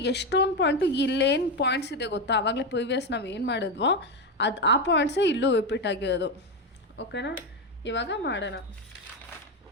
ಎಷ್ಟೊಂದು point ಇಲ್ಲೇನು points ಇದೆ ಗೊತ್ತಾ, ಆವಾಗಲೇ ಪ್ರೀವಿಯಸ್ ನಾವು ಏನು ಮಾಡಿದ್ವೋ ಆ ಪಾಯಿಂಟ್ಸೇ ಇಲ್ಲೂ ರಿಪೀಟ್ ಆಗಿರೋದು. ಓಕೆನಾ, ಇವಾಗ ಮಾಡೋಣ.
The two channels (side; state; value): both; normal; correlation 0.12